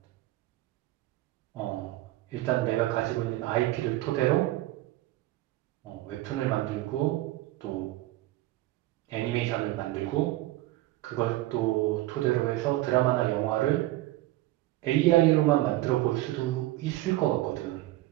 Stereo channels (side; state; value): left; quieter; 16.9 dB